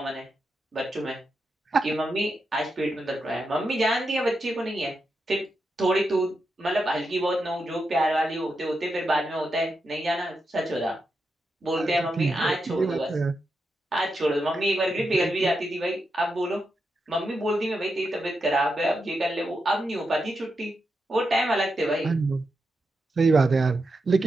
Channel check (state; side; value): normal; both; correlation 0.86